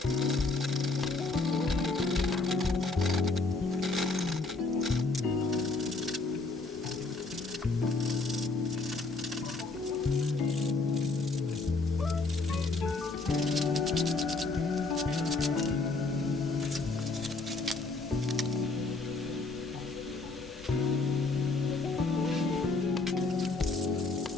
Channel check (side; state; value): right; quieter; 3.6 dB